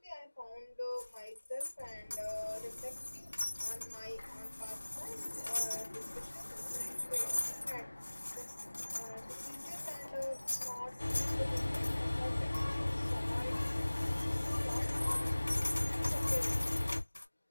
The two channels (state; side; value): inverted; both; correlation -1.00